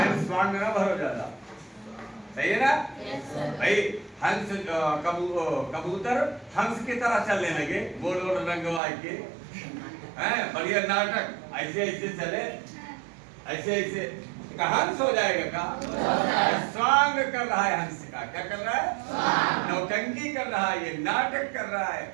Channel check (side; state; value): left; drops out; at 8.8 s